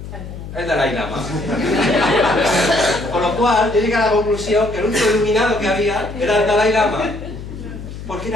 El Dalai Lama. Con lo cual, yo llegué a la conclusión que el único iluminado que había era el Dalai Lama, porque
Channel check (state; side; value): noise; left; hum, 11 dB below the sound